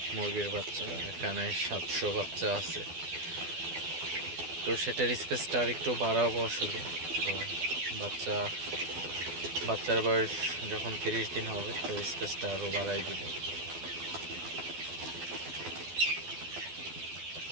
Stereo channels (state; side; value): late; left; 12 ms